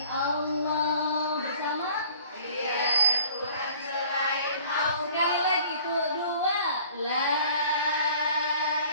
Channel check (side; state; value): both; inverted; correlation -0.51